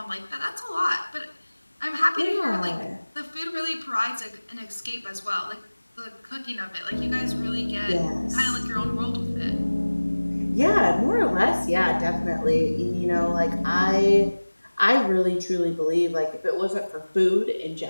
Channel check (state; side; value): inverted; both; correlation -1.00